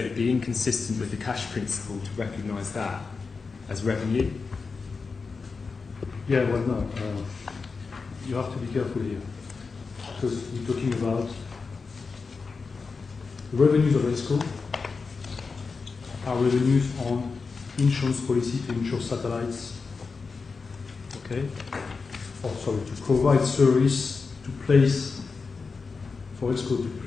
would be inconsistent with the cash principle to recognise that as revenue. Yeah, well, no. You have to be careful here, because we're talking about the revenues of ESCO are revenues on insurance policy to insure satellites, okay? Or sorry, to provide service to place, for ESCO to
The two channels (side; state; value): right; quieter; 4.7 dB